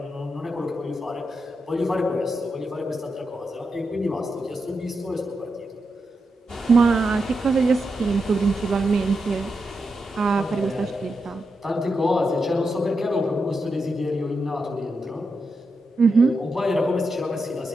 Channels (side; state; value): both; normal; correlation 0.86